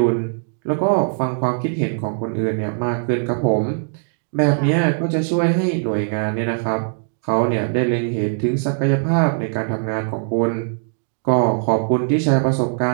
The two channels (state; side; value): silent; left; digital silence